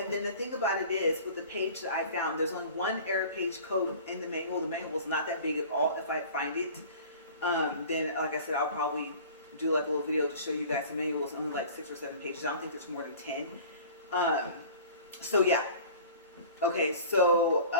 then the thing about it is, with the page that I found, there's only one error page code in the manual. The manual is not that big at all. If I find it, then, like I said, I'll probably do like a little video to show you guys. The manual is only like 6 or 7 pages. I don't think there's more than 10. So yeah. Okay, so,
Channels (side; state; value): both; inverted; correlation -0.42